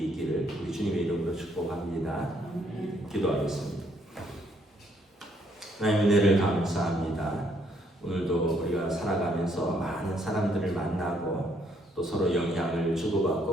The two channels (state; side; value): normal; both; correlation 0.70